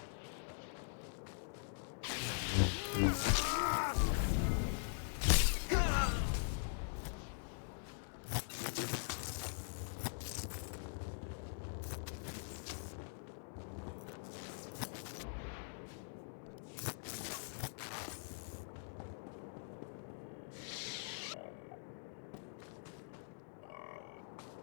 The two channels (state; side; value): silent; right; digital silence